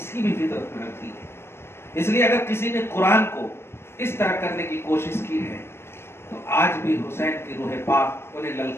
کی بھی فطرت میں رکھ دی ہے. اس لیے اگر کسی نے قرآن کو اس طرح کرنے کی کوشش کی ہے تو آج بھی حسین کی روح پاک انہیں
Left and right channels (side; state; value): right; late; 0.12 ms